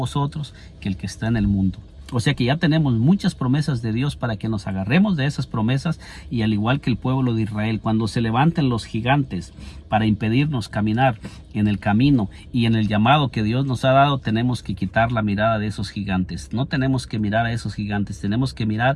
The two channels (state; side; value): identical; both; correlation 1.00